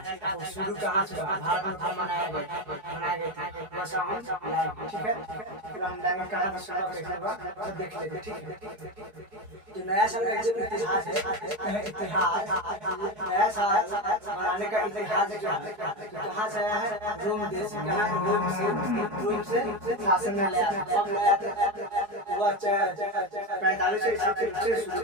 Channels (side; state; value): left; late; 4.7 ms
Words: और शुरू कहाँ से हुआ, भारत में कब मनाया गया था, वैसा हम लाएंगे, ठीक है। फिर हम लाएंगे कहाँ से शुरू कैसे हुआ तो देख लेते, ठीक है। तो नया साल का जो इतिहास है, इतिहास नया साल मनाने का इतिहास क्या है, कहाँ से आया है? रोम देश से। रोम से शासन में लाया था। कब लाया था? वो 45 ईसा से शुरू